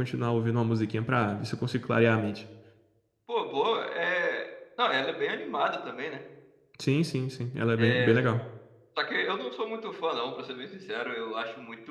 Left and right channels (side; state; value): both; identical; correlation 1.00